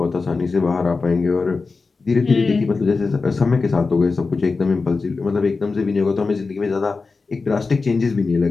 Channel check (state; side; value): quieter; right; 4.2 dB